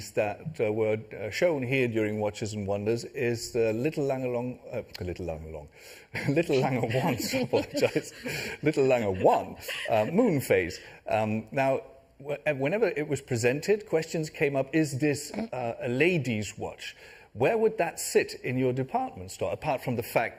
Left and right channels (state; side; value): identical; both; correlation 1.00